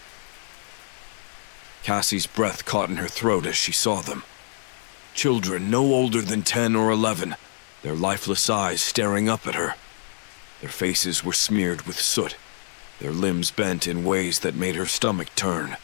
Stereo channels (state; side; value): silent; right; digital silence